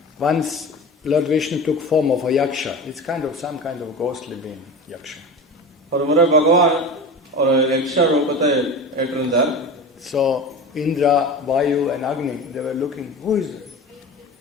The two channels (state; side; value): normal; both; correlation 0.31